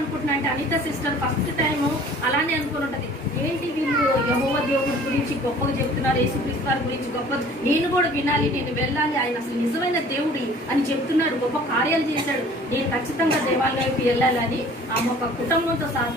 అంటే అనిత సిస్టర్ ఫస్ట్ టైం అలానే అనుకుని ఉంటది. ఏంటి వీళ్ళు యెహోవా దేవుడి గురించి గొప్పగా చెప్తున్నారు, యేసుక్రీస్తు వారి గురించి గొప్ప, నేను కూడా వినాలి, నేను వెళ్ళాలి, ఆయన అసలు నిజమైన దేవుడి అని చెప్తున్నాడు, గొప్ప కార్యాలు చేశాడు, నేను ఖచ్చితంగా దేవాలయంకి వెళ్ళాలని ఆమె ఒక కుటుంబంతో సహా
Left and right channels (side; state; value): both; normal; correlation 0.50